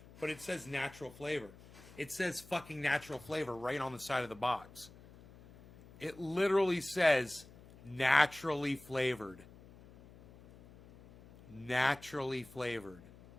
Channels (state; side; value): noise; left; hum, 21 dB below the sound